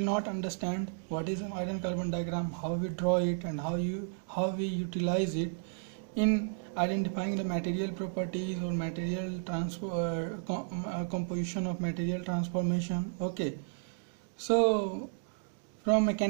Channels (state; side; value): silent; left; digital silence